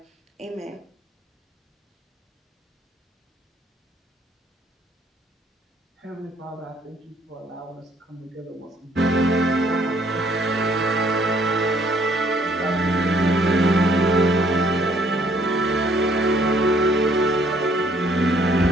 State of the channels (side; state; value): both; normal; correlation 0.64